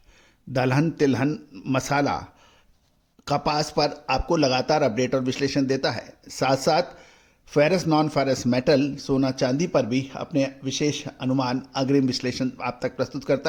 दलहन, तिलहन, मसाला, कपास पर आपको लगातार अपडेट और विश्लेषण देता है। साथ साथ फेरस, नॉन फेरस मेटल, सोना चांदी पर भी अपने विशेष अनुमान, अग्रिम विश्लेषण आप तक प्रस्तुत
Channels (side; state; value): both; identical; correlation 1.00